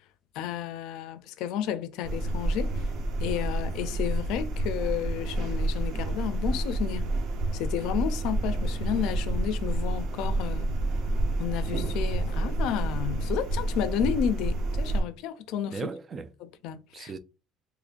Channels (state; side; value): normal; both; correlation 0.66